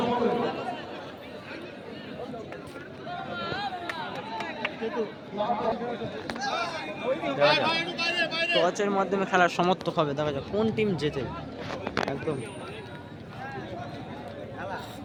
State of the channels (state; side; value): identical; both; correlation 1.00